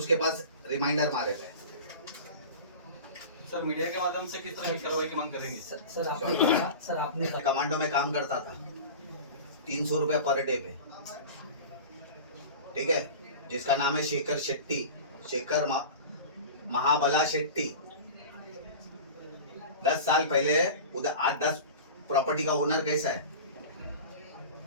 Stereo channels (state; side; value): inverted; both; correlation -0.33